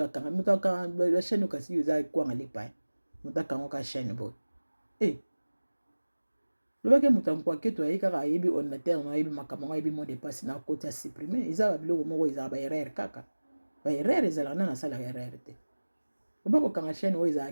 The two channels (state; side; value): inverted; both; correlation -1.00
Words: akanga moto akanga la chaîne okasi eza ekwanga lipa moto akango ka chaîne boye lobaki moto ankwake ayebi kaka ayebi ordinateur na ayebi makambo ngo ayebi mot de passe na koti ya supprime eza biloko moko ezala baerreur kaka baerreur ezalaka nana asalaka erreur te oba kokanga chaîne oyo